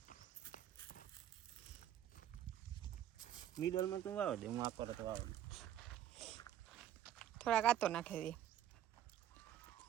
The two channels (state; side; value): quieter; left; 11.1 dB